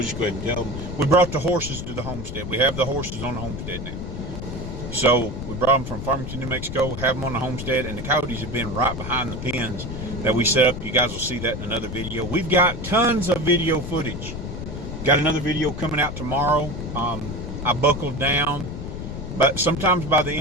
just go ahead and tell them. We brought the horses to the homestead. We have the horses on the homestead now. So we brought them from Farmington, New Mexico, have them on the homestead, and the coyotes have been right behind the pens that we set up. You guys will see that in another video. We've got tons of video footage. Got another video coming out tomorrow. I buckled down, but sometimes by the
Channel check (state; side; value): noise; left; rumble, 7 dB below the sound